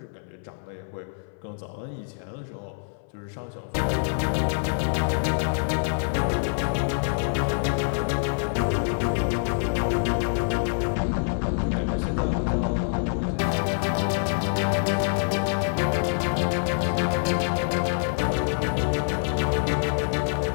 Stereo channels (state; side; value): silent; right; 58 dB below the other